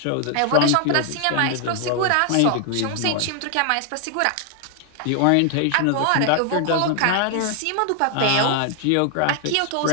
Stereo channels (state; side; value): different; both; correlation 0.00